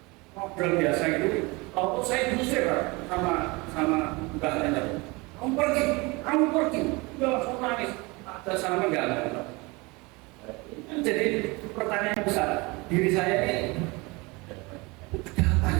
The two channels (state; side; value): quieter; left; 25.4 dB